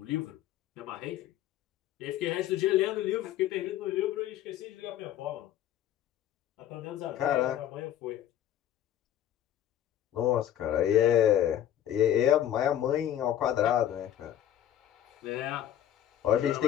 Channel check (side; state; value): right; quieter; 11.4 dB